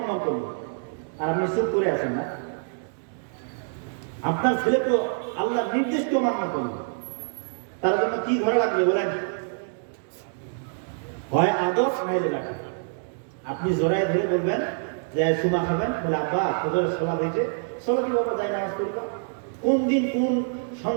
করলো, আর আপনি চুপ করে আছেন না। আপনার ছেলে তো আল্লাহর নির্দেশকে মান্য করলো, তার জন্য কি ঘরে লাগবে বলেন? হয় আদর্শ নাইলে রাখে। আপনি জোরায় ধরে বলবেন যে সুমা খাবেন, বলে আব্বা ফজরের সালাত হয়েছে, চলো কি বাবা যাই নামাজ পড়বা। কোন দিন কোন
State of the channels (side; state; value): left; silent; 61 dB below the other